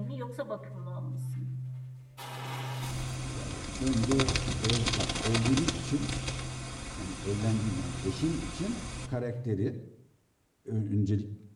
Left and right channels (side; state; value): both; identical; correlation 1.00